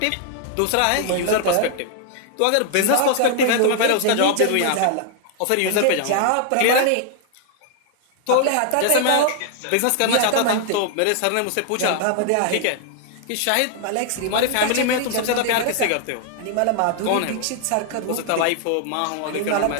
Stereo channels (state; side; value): different; both; correlation 0.00